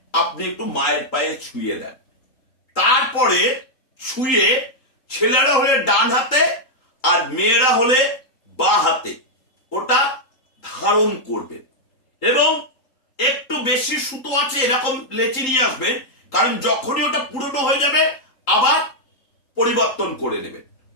আপনি একটু মায়ের পায়ে ছুঁয়ে দেন। তারপরে ছুঁয়ে ছেলেরা হলে ডান হাতে আর মেয়েরা হলে বাঁ হাতে ওটা ধারণ করবেন। এবং একটু বেশি সুতো আছে এরকম লেচি নিয়ে আসবেন, কারণ যখনই ওটা পুরনো হয়ে যাবে আবার পরিবর্তন করে নেবেন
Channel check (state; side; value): late; right; 3.8 ms